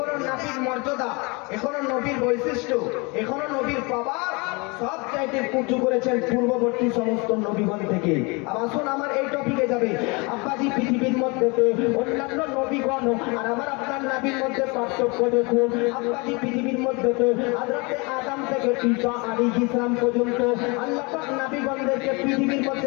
নবীর মর্যাদা, এখনো নবীর বৈশিষ্ট্য, এখনো নবীর পাওয়ার সব চাইতে উঁচু করেছেন পূর্ববর্তী সমস্ত নবীগণ থেকে। আর আসুন আমার এই টপিকে যাবে। আব্বাজি পৃথিবীর মধ্যে অন্যান্য নবীগণ আর আমার আপনার নবীর মধ্যে পার্থক্য দেখুন। আব্বাজি পৃথিবীর মধ্যে হযরতে আদম থেকে ঈসা আলাইহিস সালাম পর্যন্ত আল্লাহ পাক নবীগণদেরকে পৃথিবীর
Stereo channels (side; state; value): right; quieter; 28.6 dB